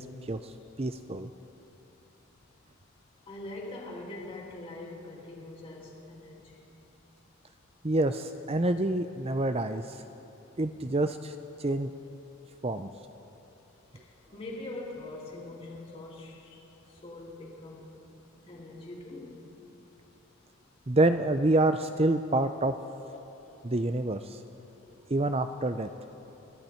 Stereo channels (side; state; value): both; normal; correlation 0.58